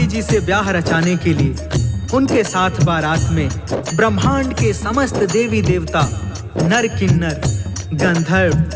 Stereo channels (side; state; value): both; identical; correlation 1.00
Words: जी से ब्याह रचाने के लिए उनके साथ बारात में ब्रह्मांड के समस्त देवी देवता, नर किन्नर, गंधर्व,